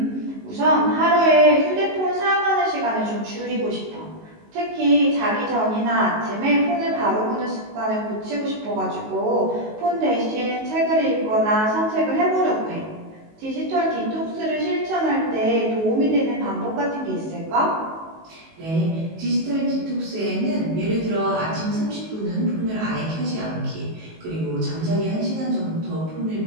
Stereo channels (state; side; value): late; left; 19 ms